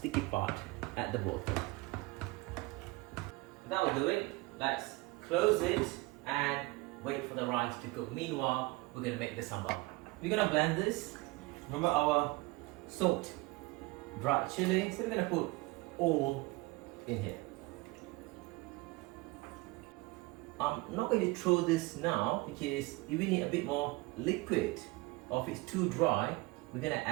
part at the bottom. That'll do it. Let's close it and wait for the rice to cook. Meanwhile, we're gonna make the sambal. We're gonna blend this. Remember our salt, dried chili, so we're gonna put all in here. I'm not going to throw this now because if we need a bit more liquid, or if it's too dry, we're gonna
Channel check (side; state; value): left; quieter; 22.9 dB